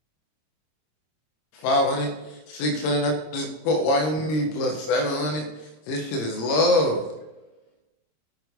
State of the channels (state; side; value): late; right; 26 ms